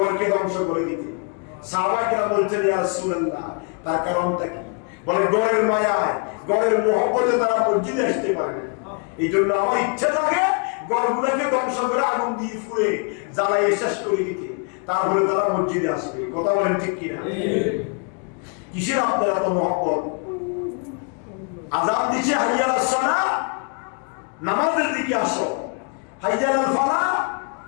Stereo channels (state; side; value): quieter; right; 38.3 dB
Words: ধ্বংস করে দিতে। সাহাবায়ে কেরাম বলছেন ইয়া রাসূলুল্লাহ, তার কারণটা কি? বলে ঘরের মায়ায়, ঘরের মহব্বতে তারা মসজিদে আসতে পারে না। এই জন্য আমার ইচ্ছা থাকে ঘরগুলোকে ধ্বংস করে আগুন দিয়ে ফুড়ে জ্বালাইয়ে শেষ করে দিতে, তারপরে তারা মসজিদে আসবে। কথা বলেন ঠিক কিনা? কিসের আপনার এত মহব্বত? আযান দিচ্ছে হাইয়া আলাস সালাহ, নামাজের দিকে আসো। হাইয়া আলাল ফালাহ,